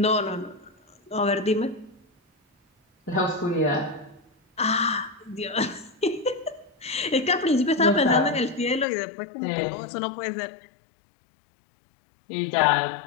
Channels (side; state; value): right; drops out; at 8.8 s